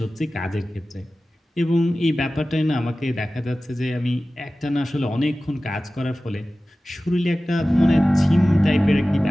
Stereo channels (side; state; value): both; normal; correlation 0.96